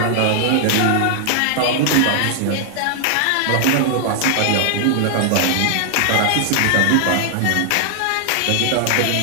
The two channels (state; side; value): different; both; correlation 0.00